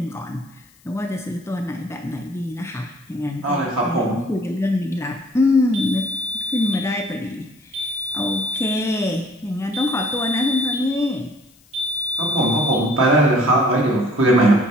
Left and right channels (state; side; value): noise; left; hiss, 30 dB below the sound